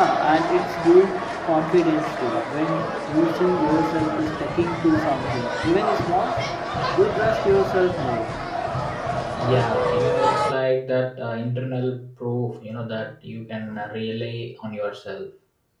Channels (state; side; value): identical; both; correlation 1.00